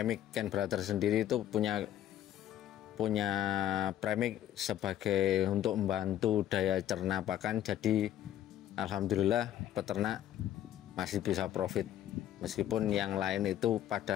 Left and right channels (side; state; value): right; quieter; 11.7 dB